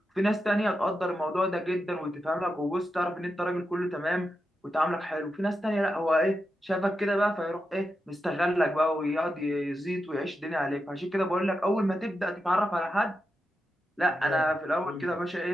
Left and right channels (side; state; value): both; normal; correlation 0.87